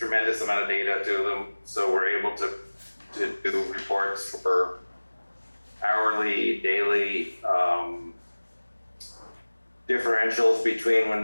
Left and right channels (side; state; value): both; inverted; correlation -1.00